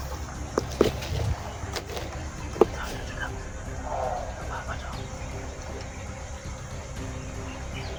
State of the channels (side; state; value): both; identical; correlation 1.00